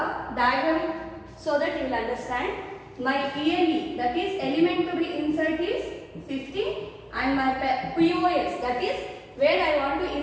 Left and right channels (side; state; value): both; identical; correlation 1.00